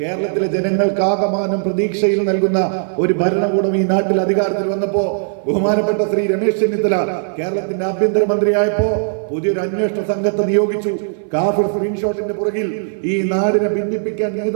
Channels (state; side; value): silent; left; 60 dB below the other